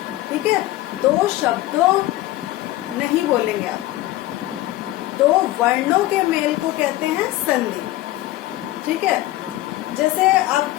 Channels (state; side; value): quieter; right; 16.6 dB